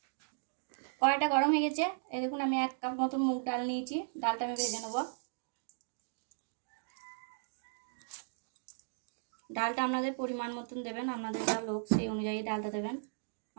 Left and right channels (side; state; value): left; silent; digital silence